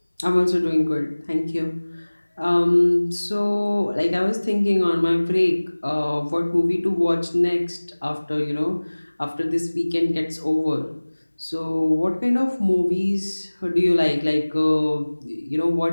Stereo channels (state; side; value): inverted; both; correlation -1.00